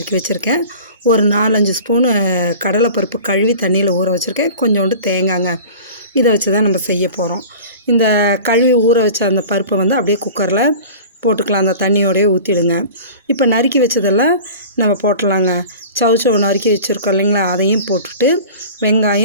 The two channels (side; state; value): both; inverted; correlation -0.39